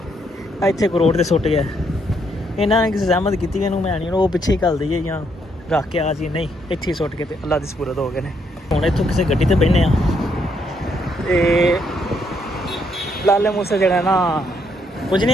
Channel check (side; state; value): both; normal; correlation 0.73